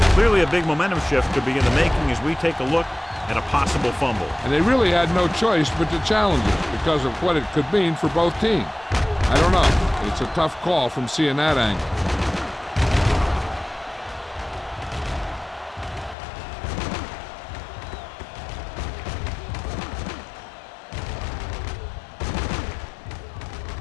Clearly a big momentum shift could be in the making as we take a look at a possible fumble. And they really had no choice but to challenge it because of what it could mean for both teams. I don't know. It's a tough call from seeing that angle.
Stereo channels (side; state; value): right; drops out; at 16.2 s